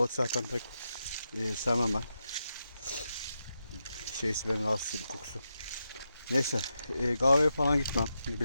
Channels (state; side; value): inverted; both; correlation -0.86